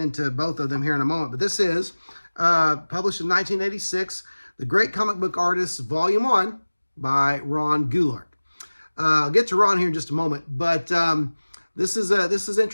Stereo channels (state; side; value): inverted; both; correlation -1.00